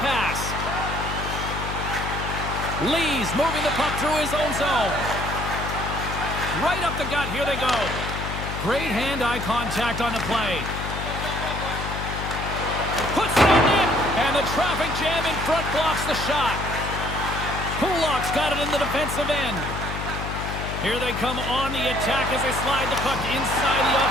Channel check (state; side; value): noise; left; hum, 6 dB below the sound